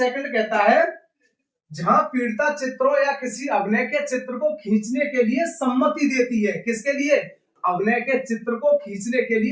कहता है, जहां पीड़िता चित्रों या किसी अभिनय के चित्र को खींचने के लिए सम्मति देती है। किसके लिए, अभिनय के चित्र को खींचने के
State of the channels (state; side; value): identical; both; correlation 1.00